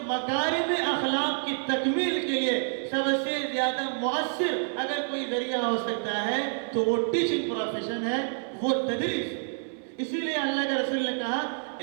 مکارم اخلاق کی تکمیل کے لیے سب سے زیادہ مؤثر اگر کوئی ذریعہ ہو سکتا ہے تو وہ ٹیچنگ پروفیشن ہے، وہ تدریس. اسی لیے اللہ کے رسول نے کہا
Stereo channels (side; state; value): left; silent; 59 dB below the other